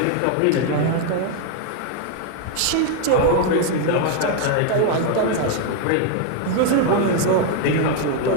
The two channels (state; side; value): different; both; correlation 0.01